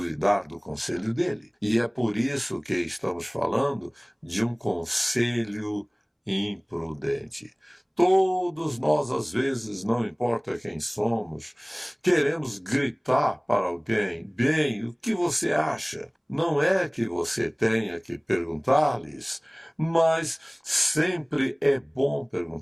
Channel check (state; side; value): identical; both; correlation 1.00